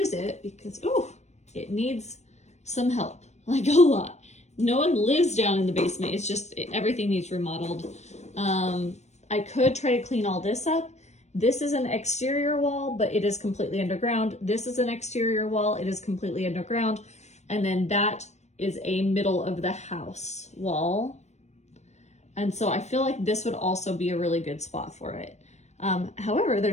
it because, oh, it needs some help, like a lot. No one lives down in the basement. It's just, everything needs remodeled. I could try to clean all this up. This is an exterior wall, but it is completely underground. This is an exterior wall. It is completely underground. And then that is a middle of the house wall. And so I feel like this would also be a really good spot for it. However,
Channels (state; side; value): late; right; 0.33 ms